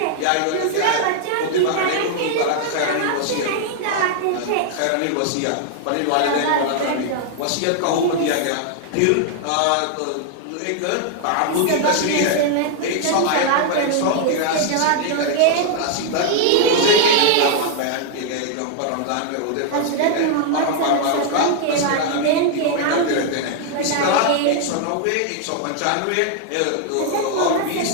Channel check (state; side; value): different; both; correlation 0.00